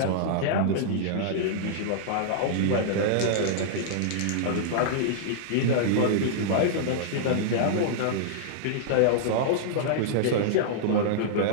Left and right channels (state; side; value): different; both; correlation -0.01